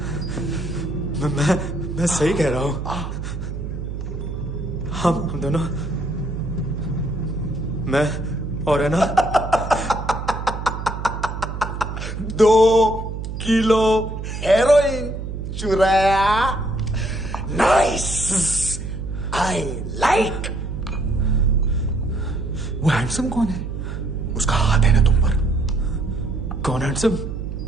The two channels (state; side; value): noise; right; hum, 6 dB below the sound